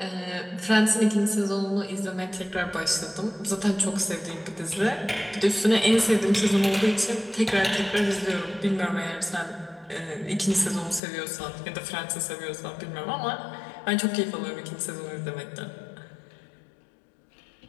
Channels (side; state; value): right; drops out; at 11.0 s